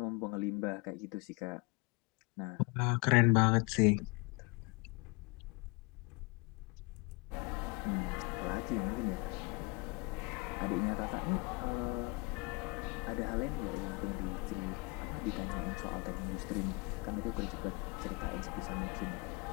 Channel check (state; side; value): quieter; right; 28.0 dB